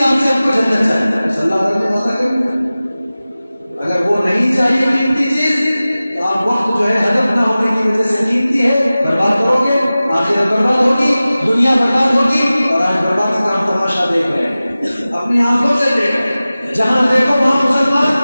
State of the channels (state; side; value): inverted; both; correlation -0.97